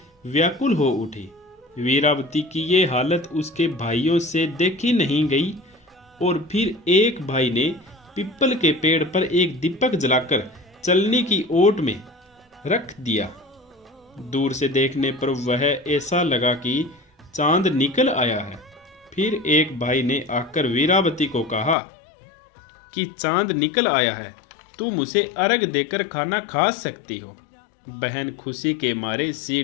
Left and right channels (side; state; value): right; drops out; at 21.8 s